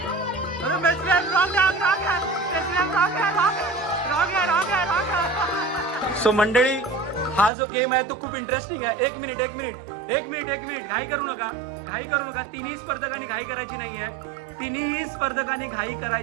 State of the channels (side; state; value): left; drops out; at 7.5 s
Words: अरे मेस्त्री साहेब रॉंग. सो मंडळी हा जो गेम आहे तो खूप इंटरेस्टिंग आहे. एक मिनिट घाई करू नका. तिन्ही स्पर्धकांनी घाई